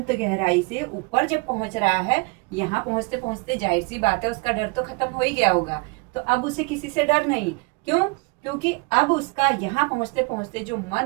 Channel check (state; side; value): quieter; left; 28.7 dB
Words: गहराई से ऊपर जब पहुंच रहा है, यहाँ पहुंचते पहुंचते जाहिर सी बात है उसका डर तो खत्म हो ही गया होगा। तो अब उसे किसी से डर नहीं। क्यों? क्योंकि अब उसका यहाँ पहुंचते पहुंचते जो